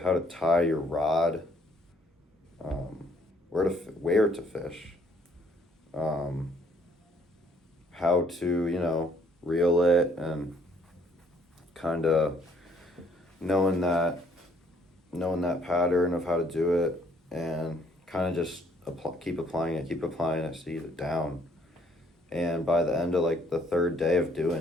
tie your rod, where to fish, how to reel it, and kind of knowing that pattern of how to do it, and kind of just keep applying it so you get it down. And by the end of like the third day of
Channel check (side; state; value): both; normal; correlation 0.64